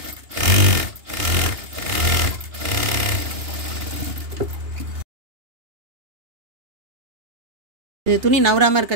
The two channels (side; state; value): left; late; 2.8 ms